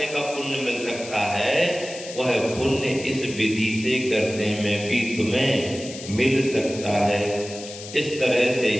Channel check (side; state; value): left; noise; hiss, 13 dB below the sound